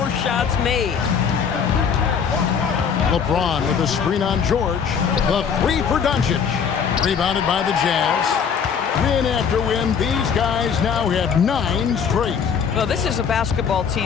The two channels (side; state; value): right; quieter; 6.9 dB